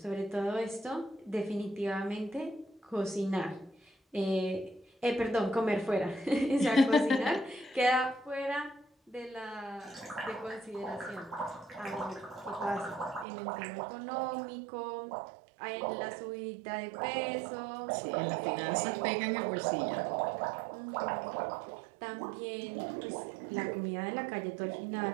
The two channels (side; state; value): left; drops out; at 13.2 s